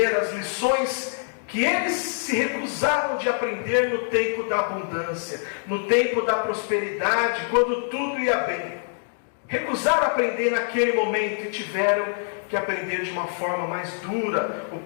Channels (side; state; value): right; silent; digital silence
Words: as lições que eles se recusaram de aprender no tempo da abundância, no tempo da prosperidade, quando tudo ia bem. Recusaram aprender naquele momento e tiveram que aprender de uma forma mais dura. O